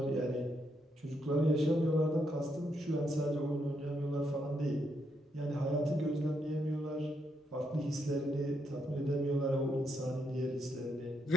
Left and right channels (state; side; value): normal; both; correlation 0.77